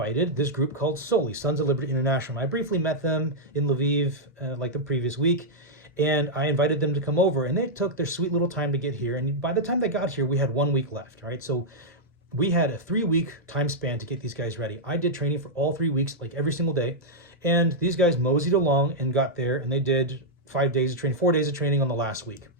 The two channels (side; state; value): both; normal; correlation -0.06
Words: this group called Soli, Sons of Liberty International. I briefly met them in Lviv like the previous week, and I invited them to come over, and they took their sweet little time to get here. And by the time they got here, we had 1 week left, right? So we had a 3-week time span to get these guys ready. I did training for all 3 weeks, like every single day. And these guys moseyed along and got there, and they did 5 days of training, 4 days of training on the last week.